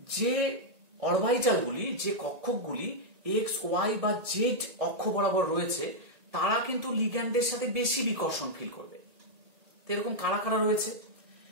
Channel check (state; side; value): late; left; 1.9 ms